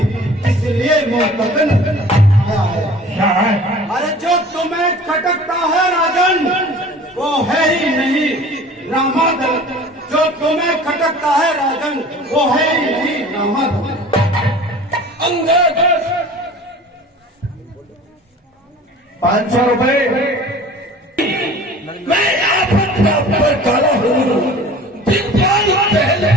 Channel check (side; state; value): both; normal; correlation 0.44